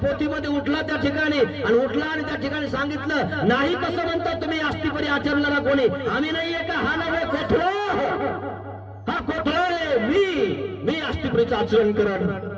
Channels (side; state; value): both; identical; correlation 1.00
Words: उठला त्या ठिकाणी आणि उठला आणि त्या ठिकाणी सांगितलं, नाही कसं म्हणता तुम्ही अस्थिपरी आचरणारा कोणी, आम्ही नाहीये का, हा नव्हे कोथळो, हा कोथळो आहे, मी अस्थिपरीचं आचरण करण.